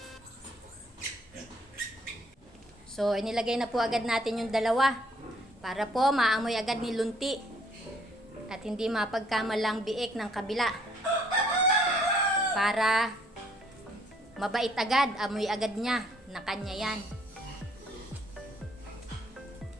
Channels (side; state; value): both; normal; correlation 0.64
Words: So, inilagay na po agad natin yung dalawa para po maamoy agad ni Lunti at hindi mapagkamalang biik ng kabila. Para mabait agad, amoy agad niya na kanya yan.